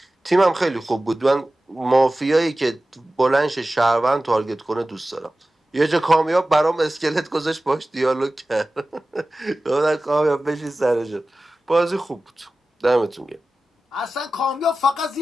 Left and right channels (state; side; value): normal; both; correlation 0.96